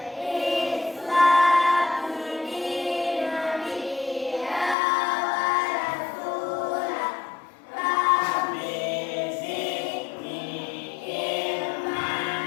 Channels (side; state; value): right; drops out; at 4.8 s